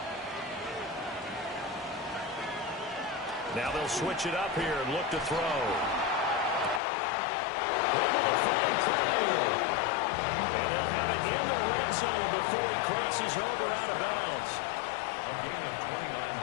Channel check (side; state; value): right; drops out; at 6.8 s